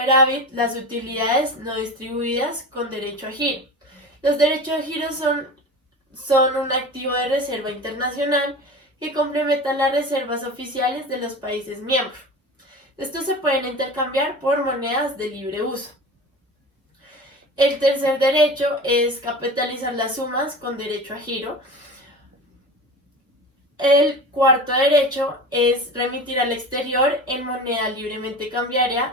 las utilidades no distribuidas con derecho a giro. Los derechos a giro son un activo de reserva internacional que complementan las reservas oficiales de los países miembros. Estos se pueden intercambiar por monedas de libre uso. El tercer derecho es capitalizar las sumas con derecho a giro. El cuarto derecho es remitir al exterior en moneda libremente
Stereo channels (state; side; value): normal; both; correlation 0.32